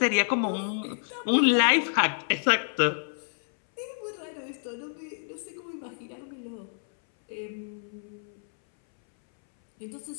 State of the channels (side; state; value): right; silent; 59 dB below the other